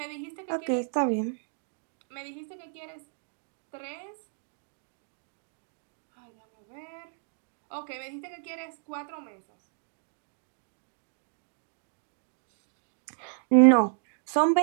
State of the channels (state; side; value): silent; left; digital silence